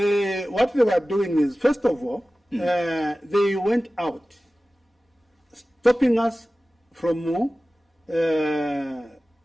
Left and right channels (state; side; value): normal; both; correlation 0.96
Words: they were doing is, first of all, they went out, stopping us from